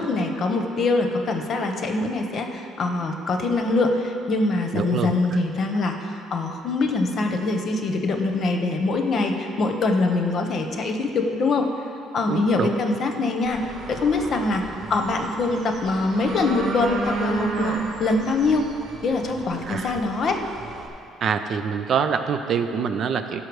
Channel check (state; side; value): normal; both; correlation 0.68